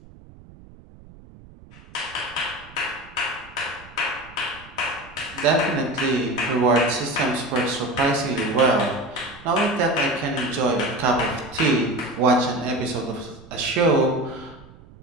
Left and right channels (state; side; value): noise; right; rumble, 21 dB below the sound